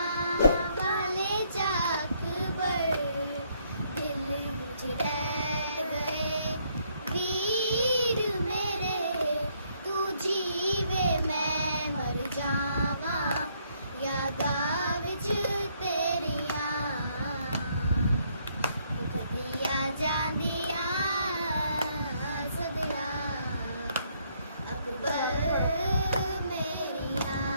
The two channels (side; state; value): both; inverted; correlation -0.70